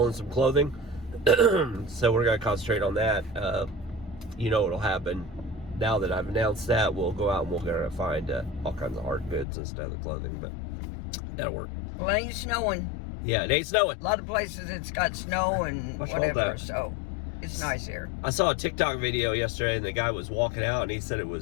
some clothing, so we're gonna concentrate on that. You know what'll happen now that I've announced that? We'll go out and we're gonna find all kinds of hard goods instead of the clothing, but that'll work. Well, it ain't snowing. Yeah, it ain't snowing. A lot of places it's got snow and whatever, so it's nice here. I saw a TikTok video yesterday, and the guy was walking out, and he said it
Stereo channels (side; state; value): right; drops out; at 9.5 s